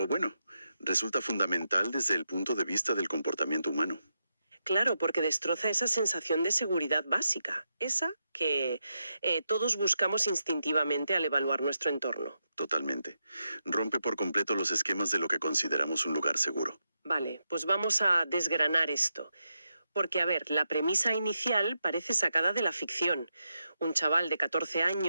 bueno, resulta fundamental desde el punto de vista del comportamiento humano. Claro, porque destroza esa sensación de seguridad básica, esa que todos buscamos instintivamente al evaluar nuestro entorno. Totalmente. Rompe por completo los esquemas de lo que consideramos un lugar seguro. Vale, pues vamos a desgranar esto. Porque, a ver, la premisa inicial parece sacada de la ficción. Un chaval de 14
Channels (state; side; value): inverted; both; correlation -0.85